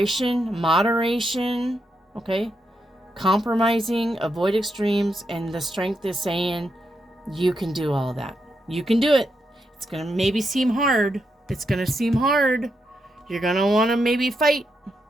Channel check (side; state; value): both; normal; correlation 0.83